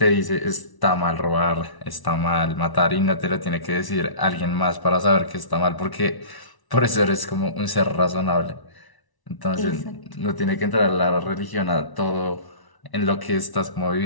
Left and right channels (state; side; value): late; right; 1.0 ms